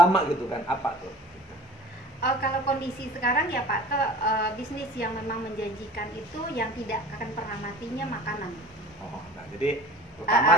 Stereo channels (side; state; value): both; normal; correlation 0.44